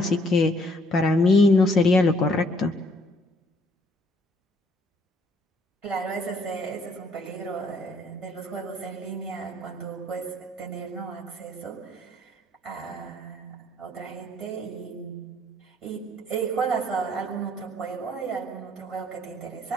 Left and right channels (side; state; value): both; normal; correlation 0.66